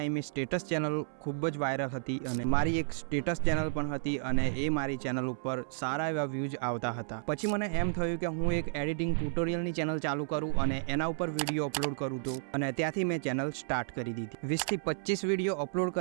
સ્ટેટસ ચેનલ ખૂબ જ વાયરલ હતી અને મારી એક સ્ટેટસ ચેનલ પણ હતી અને એ મારી ચેનલ ઉપર સારા એવા વ્યૂઝ આવતા હતા. પછી મને એમ થયું કે હું એક એડિટિંગ ટ્યુટોરિયલની ચેનલ ચાલુ કરું અને એના ઉપર વિડીયો અપલોડ કરું તો, અને ત્યાંથી મેં ચેનલ સ્ટાર્ટ કરી દીધી. 20થી 25 વિડીયો અપલોડ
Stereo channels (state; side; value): silent; left; 56 dB below the other